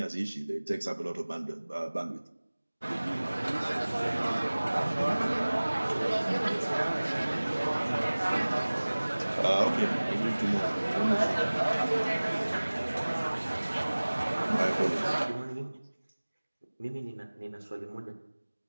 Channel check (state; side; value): inverted; both; correlation -1.00